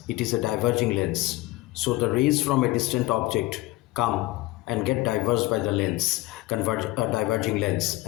it is a diverging lens. So the rays from a distant object come and get diverged by the lens, diverging lens,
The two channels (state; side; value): quieter; right; 19.3 dB